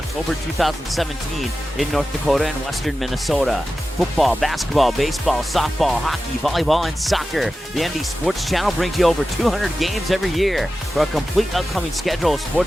2017 in North Dakota and western Minnesota. Football, basketball, baseball, softball, hockey, volleyball, and soccer. The ND Sports Channel brings you over 200 games every year. For a complete upcoming schedule of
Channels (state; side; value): normal; both; correlation 0.94